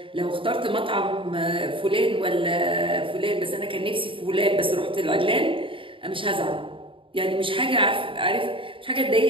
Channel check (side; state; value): left; late; 0.25 ms